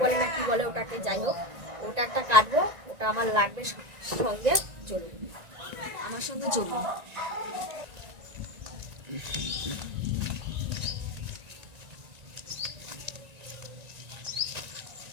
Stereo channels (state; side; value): late; left; 1.9 ms